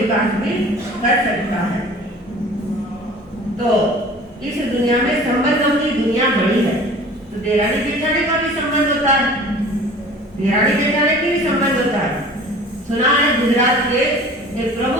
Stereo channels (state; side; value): normal; both; correlation 0.44